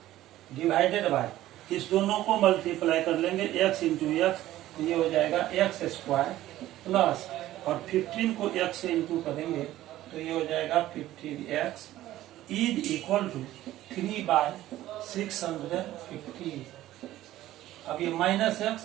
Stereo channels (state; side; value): quieter; left; 14.6 dB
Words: डिवाइडेड बाय, इस दोनों को मल्टीप्लाई कर लेंगे x इंटू एक्स, ये हो जाएगा एक्स स्क्वायर प्लस, और 15 को x से इंटू करेंगे तो ये हो जाएगा 15x is equal to 3 by 650। अब ये माइनस एक्स